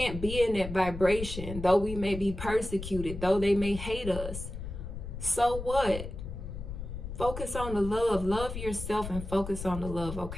be in that vibration, though we may be persecuted, though they may hate us. So what? Focus on the love. Love yourself and focus on the love,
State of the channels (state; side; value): noise; left; rumble, 8 dB below the sound